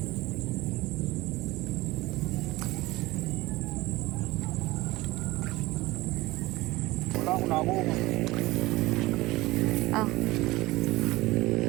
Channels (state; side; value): quieter; left; 19.6 dB